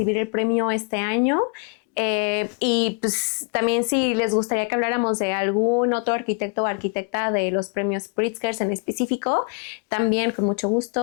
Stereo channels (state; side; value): quieter; right; 33.5 dB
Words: el premio este año. Y pues también si les gustaría que habláramos de algún otro arquitecto o arquitecta de los premios Pritzker en específico, también con mucho